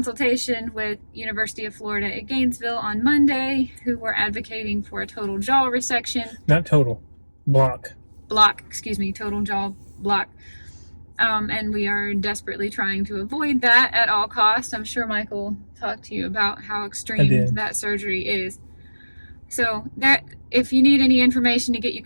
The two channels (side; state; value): both; inverted; correlation -1.00